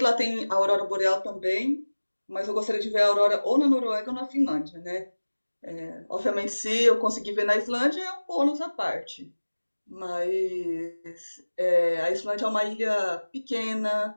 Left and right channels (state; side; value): inverted; both; correlation -1.00